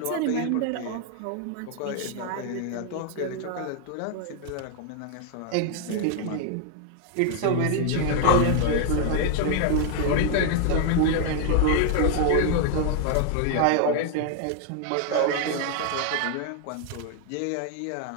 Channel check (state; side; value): different; both; correlation 0.00